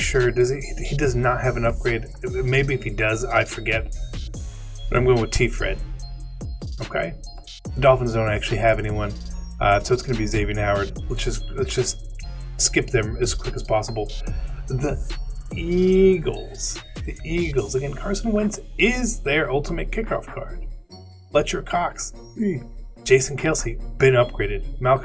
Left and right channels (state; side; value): identical; both; correlation 1.00